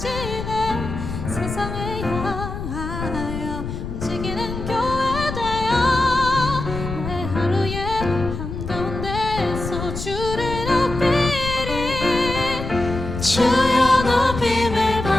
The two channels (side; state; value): left; noise; rumble, 7 dB below the sound